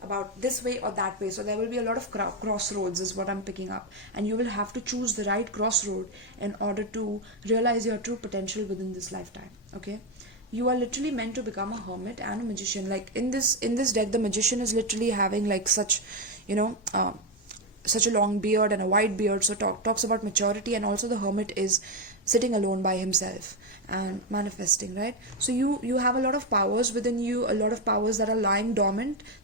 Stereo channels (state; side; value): normal; both; correlation 0.08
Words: about this way or that way. So there will be a lot of crossroads is what I'm picking up, and you will have to choose the right crossroad in order to realize your true potential within this lifetime, okay? You are literally meant to become a hermit and a magician. Like in this deck, the magician is literally having like such, such a long beard and a white beard, so talks about maturity. And also the hermit is sitting alone by himself and manifesting, right? So you have a lot of powers within you, a lot of powers that are lying dormant,